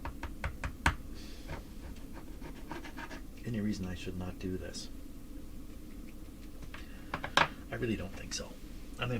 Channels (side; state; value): both; identical; correlation 1.00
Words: Any reason I should not do this? I really don't think so. I mean,